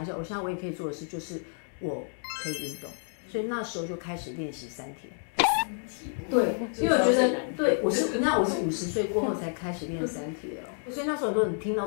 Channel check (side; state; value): right; silent; 58 dB below the other